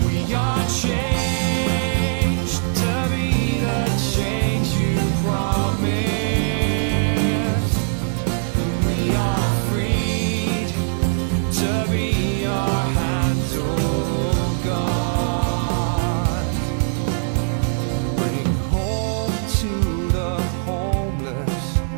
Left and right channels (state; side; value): silent; left; 65 dB below the other